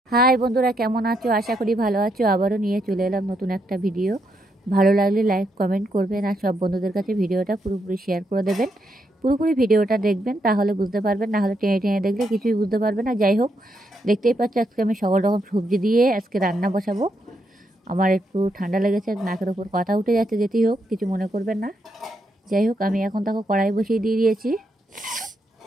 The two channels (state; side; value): normal; both; correlation 0.79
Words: হাই বন্ধুরা, কেমন আছো? আশা করি ভালো আছো। আবারও নিয়ে চলে এলাম নতুন একটা ভিডিও। ভালো লাগলে লাইক কমেন্ট করবেন আর সব বন্ধুদের কাছে ভিডিওটা পুরোপুরি শেয়ার করে দেবেন। পুরোপুরি ভিডিওটা দেখবেন, তাহলে বুঝতে পারবেন, না হলে টেনে টেনে দেখলে কিছুই বুঝতে পারবেন না। যাই হোক, দেখতেই পাচ্ছ আজকে আমি সকল রকম সবজি দিয়ে আজকে রান্না বসাবো। আমার একটু ঠান্ডা লেগেছে, নাকের ওপর কথা উঠে যাচ্ছে, যেতেই হোক কিছু মনে করবেন না। যাই হোক, আমি এখন তাকে কড়াই বসিয়ে দিয়ে দিয়েছি।